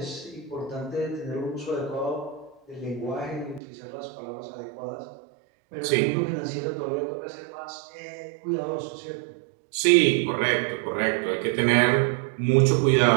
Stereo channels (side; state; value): left; drops out; at 3.6 s